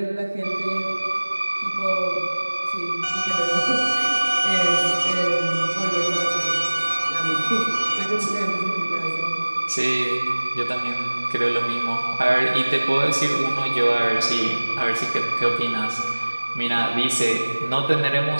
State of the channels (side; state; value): both; inverted; correlation -1.00